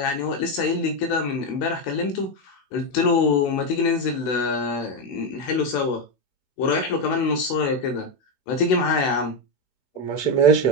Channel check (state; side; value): late; right; 16 ms